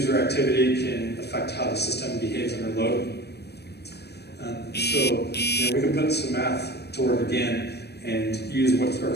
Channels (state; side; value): late; right; 0.48 ms